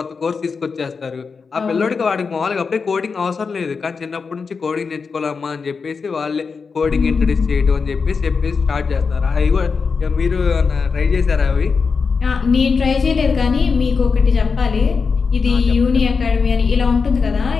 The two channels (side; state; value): right; quieter; 5.1 dB